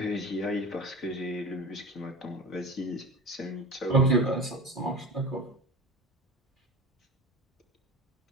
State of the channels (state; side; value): normal; both; correlation 0.31